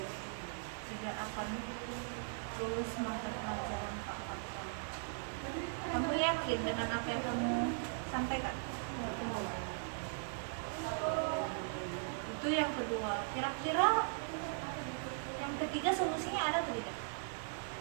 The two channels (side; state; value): left; silent; 52 dB below the other